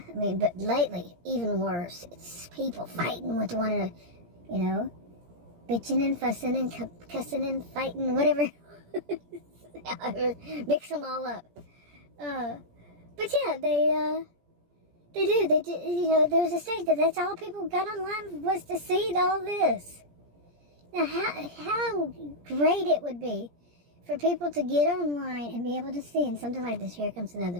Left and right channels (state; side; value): late; left; 17 ms